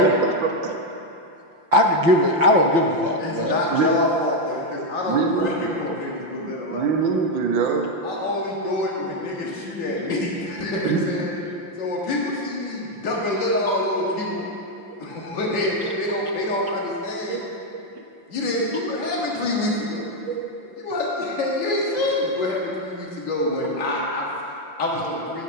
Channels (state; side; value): late; left; 5.8 ms